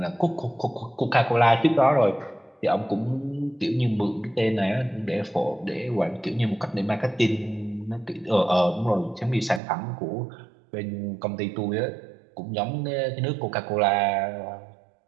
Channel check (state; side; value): drops out; left; at 9.6 s